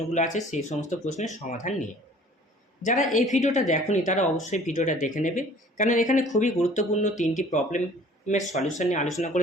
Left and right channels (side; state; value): both; normal; correlation 0.51